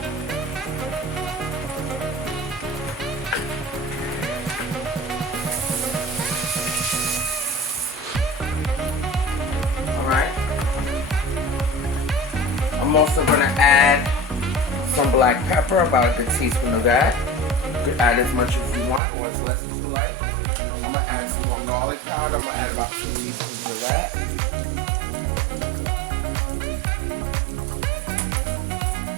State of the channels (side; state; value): left; drops out; at 19.0 s